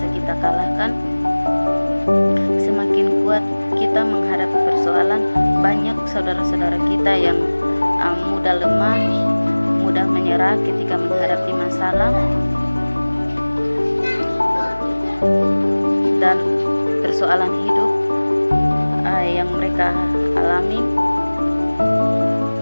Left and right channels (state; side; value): inverted; both; correlation -1.00